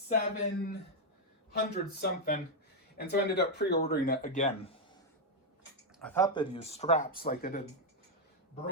something. And so I ended up pre-ordering it again. I thought they'd use straps like they did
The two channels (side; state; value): both; normal; correlation 0.00